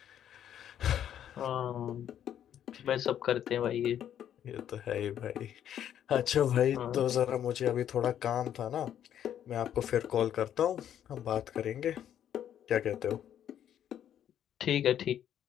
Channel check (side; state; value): right; quieter; 10.1 dB